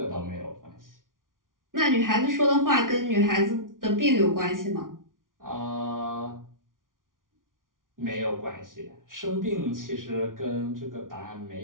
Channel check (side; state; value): left; late; 0.89 ms